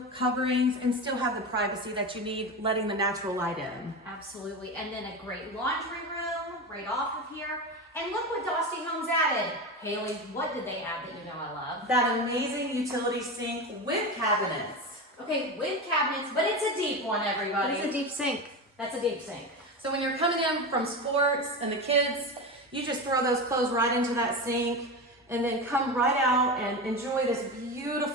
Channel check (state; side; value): normal; both; correlation 0.22